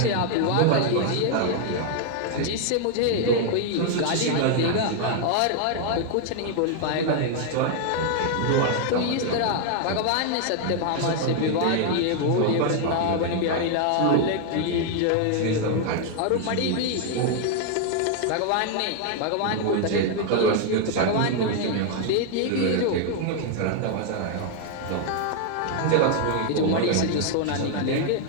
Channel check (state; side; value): different; both; correlation 0.00